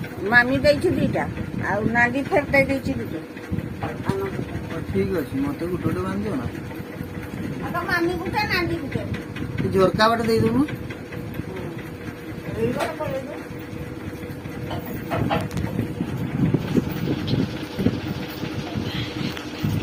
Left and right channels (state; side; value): identical; both; correlation 1.00